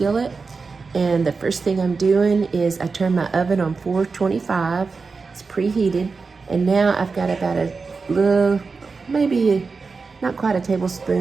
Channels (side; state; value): left; quieter; 4.5 dB